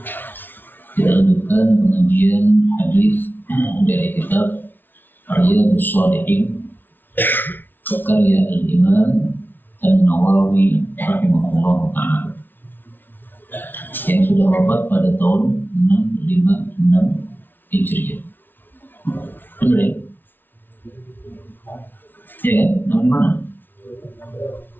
Kita lanjutkan pengajian hadis dari kitab Riyadhus Shalihin karya Al-Imam An-Nawawi rahimahullah ta'ala yang sudah wafat pada tahun 656 Hijriah. Benar ya? Ya kan? Nama mana?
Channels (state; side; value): late; right; 0.094 ms